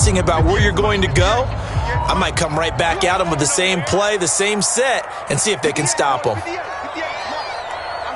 about where you're going to go. I might come right back at them with the same play, the same set, and see if they can stop them.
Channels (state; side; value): identical; both; correlation 1.00